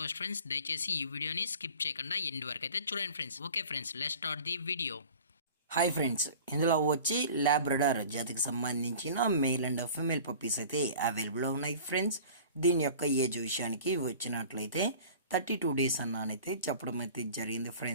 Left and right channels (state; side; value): inverted; both; correlation -0.43